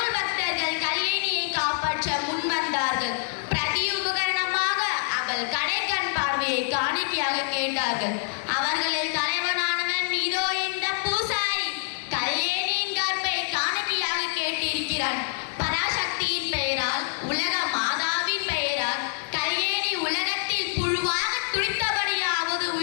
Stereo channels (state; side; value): silent; right; 61 dB below the other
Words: பக்தர்கள் கல்யாணியை காப்பாற்ற முன்வந்தார்கள். பிரதி உபகரணமாக அவள் கடைக்கண் பார்வையை காணிக்கையாக கேட்டார்கள். அவர்களில் தலைவனானவன் இதோ இந்த பூசாரி. கல்யாணியின் கற்பை காணிக்கையாக கேட்டிருக்கிறான். பராசக்தியின் பெயரால், உலக மாதாவின் பெயரால் கல்யாணி உலகத்தில் புழுவாக துடித்தபடியாவது